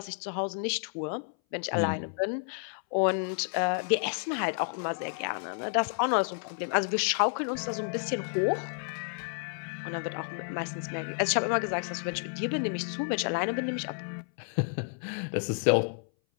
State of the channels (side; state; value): right; silent; 57 dB below the other